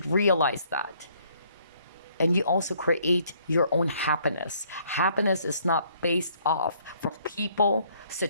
realize that. And you also create your own happiness. Happiness is not based off from people,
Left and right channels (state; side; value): inverted; both; correlation -0.64